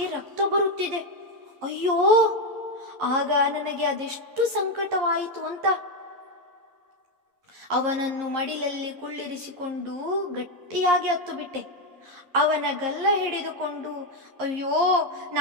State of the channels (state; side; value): late; left; 11 ms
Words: ರಕ್ತ ಬರುತ್ತಿದೆ. ಅಯ್ಯೋ, ಆಗ ನನಗೆ ಅದೆಷ್ಟು ಸಂಕಟವಾಯಿತು ಅಂತ. ಅವನನ್ನು ಮಡಿಲಲ್ಲಿ ಕುಳ್ಳಿರಿಸಿಕೊಂಡು ಗಟ್ಟಿಯಾಗಿ ಹತ್ತು ಬಿಟ್ಟೆ. ಅವನ ಗಲ್ಲ ಹಿಡಿದುಕೊಂಡು ಅಯ್ಯೋ